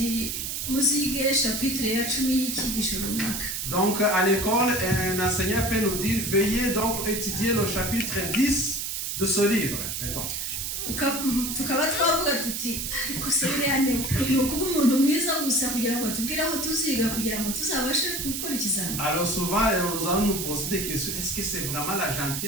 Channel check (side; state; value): right; noise; hiss, 3 dB below the sound